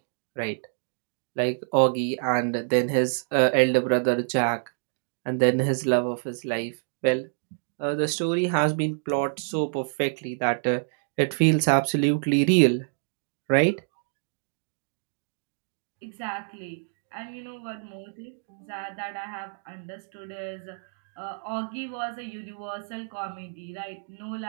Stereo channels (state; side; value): silent; left; digital silence